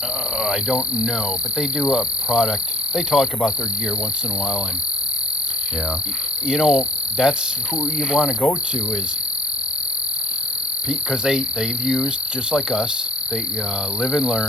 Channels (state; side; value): normal; both; correlation 0.60